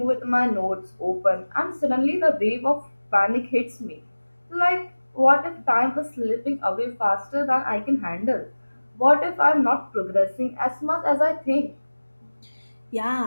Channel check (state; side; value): inverted; both; correlation -1.00